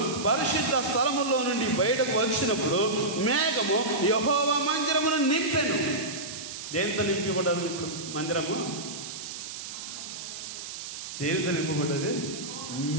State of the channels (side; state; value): right; noise; hiss, 9 dB below the sound